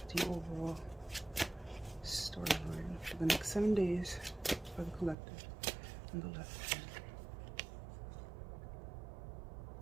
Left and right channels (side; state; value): left; drops out; at 5.2 s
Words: the overall storyline for the next 7 days for the collective on the left hand.